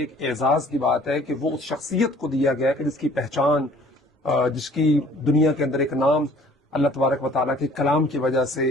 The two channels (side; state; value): both; normal; correlation 0.54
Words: एक एजाज की बात है कि वो उस शख्सियत को दिया गया है कि जिसकी पहचान, जिसकी दुनिया के अंदर एक नाम अल्लाह तबारक व तआला के कलाम की वजह से